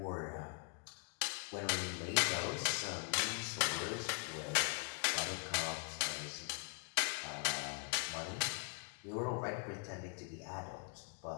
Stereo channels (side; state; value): right; quieter; 37.3 dB